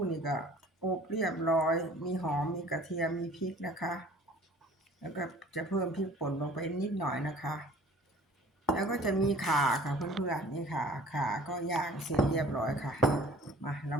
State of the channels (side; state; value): both; normal; correlation 0.49